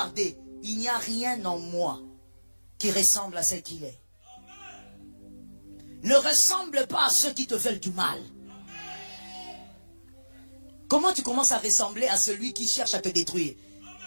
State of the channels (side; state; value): both; inverted; correlation -1.00